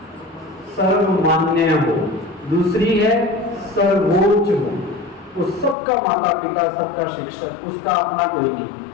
सर्वमान्य हो। दूसरी है सर्वोच्च हो, वो सबका माता पिता, सबका शिक्षक, उसका अपना कोई नहीं।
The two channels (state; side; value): drops out; right; at 5.8 s